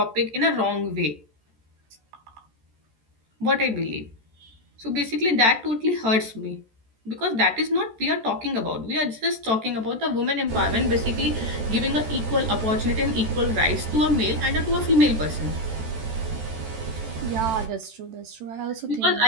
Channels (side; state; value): left; late; 14 ms